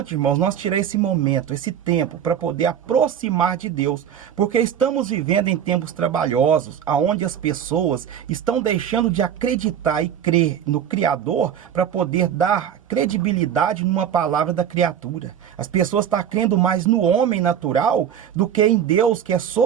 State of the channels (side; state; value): left; quieter; 9.1 dB